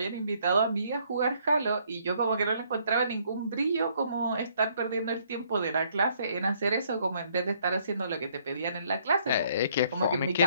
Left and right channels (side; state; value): both; inverted; correlation -0.66